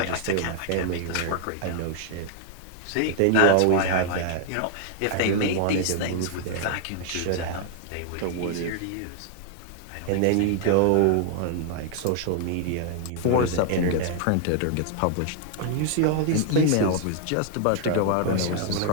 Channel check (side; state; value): both; different; correlation 0.00